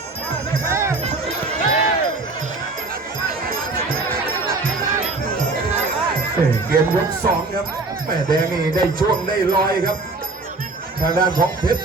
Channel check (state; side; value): quieter; left; 3.5 dB